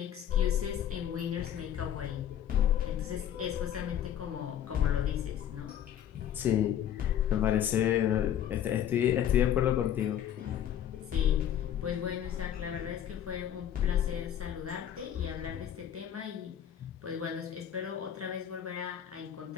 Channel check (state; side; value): quieter; right; 10.2 dB